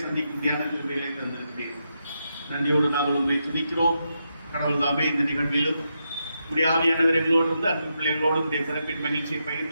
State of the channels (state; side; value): inverted; both; correlation -0.84